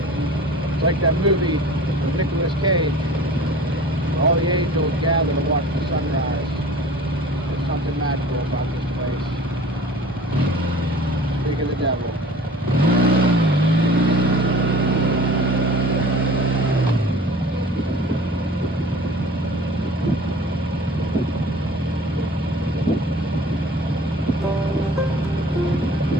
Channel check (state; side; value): normal; both; correlation 0.44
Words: It's like that movie with Nicolas Cage. All the angels gather to watch the sunrise. There's something magical about this place. Speak of the devil.